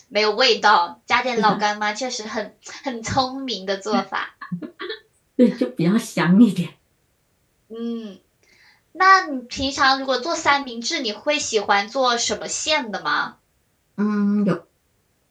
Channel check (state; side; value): identical; both; correlation 1.00